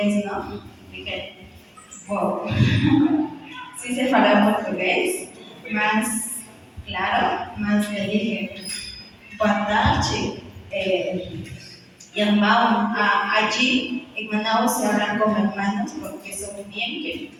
¿no? Dije, wow, sí sé falar portugués, más claro, más le dije, boa tarde, irmão, allí en Manaus se hablan como hermanos porque son bien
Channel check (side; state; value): both; identical; correlation 1.00